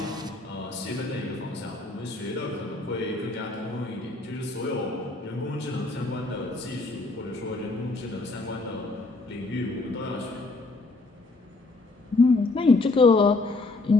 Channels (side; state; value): right; quieter; 3.3 dB